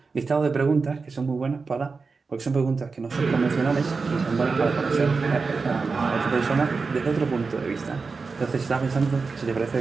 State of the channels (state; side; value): quieter; left; 4.5 dB